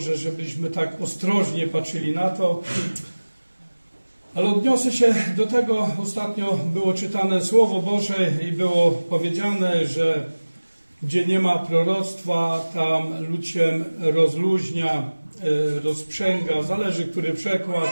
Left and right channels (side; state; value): both; inverted; correlation -1.00